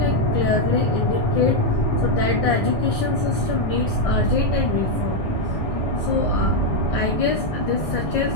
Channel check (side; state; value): right; late; 1.6 ms